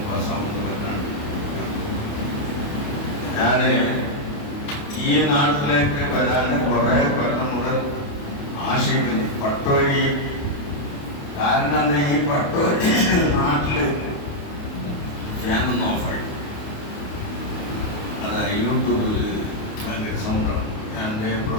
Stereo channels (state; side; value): late; right; 28 ms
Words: പാസ്സാവുന്ന പറഞ്ഞാണ്. ഞാൻ ഈ നാട്ടിലേക്ക് വരാൻ കുറേ കൊല്ലം മുതൽ ആശിക്കുന്നു. പട്ടോരി കാരണം എന്താ, ഈ പട്ടോരി നാട്ടില് ഫാനൊന്നും ഓഫായി. അതായത് യൂട്യൂബിൽ ഭയങ്കര സൗണ്ടാണ്. ഞാൻ എൻ്റെ